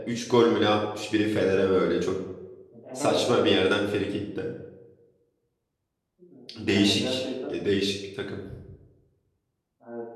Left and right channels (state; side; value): identical; both; correlation 1.00